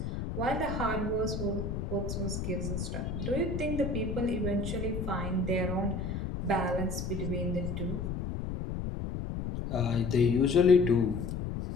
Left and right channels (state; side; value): noise; left; rumble, 4 dB below the sound